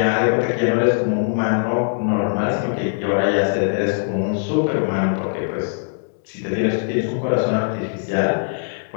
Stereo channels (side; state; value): right; silent; digital silence